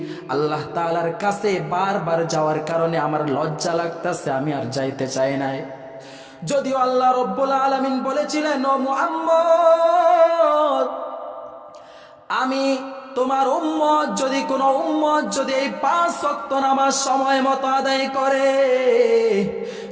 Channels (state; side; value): identical; both; correlation 1.00